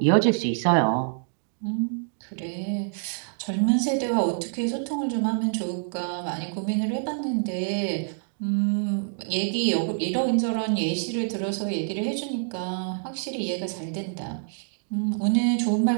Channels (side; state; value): left; silent; 61 dB below the other